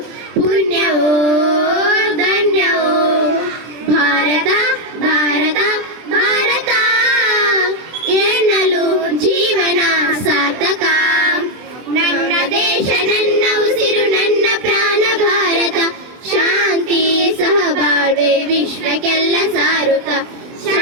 ಪುಣ್ಯವೋ ಧನ್ಯವೋ. ಭಾರತ ಭಾರತ ಭಾರತ ಎನ್ನಲು ಜೀವನ ಸಾರ್ಥಕ. ನನ್ನ ದೇಶ ನನ್ನ ಉಸಿರು ನನ್ನ ಪ್ರಾಣ ಭಾರತ, ಶಾಂತಿ ಸಹಬಾಳ್ವೆ ವಿಶ್ವಕ್ಕೆಲ್ಲ ಸಾರುತ್ತ,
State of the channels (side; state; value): left; late; 23 ms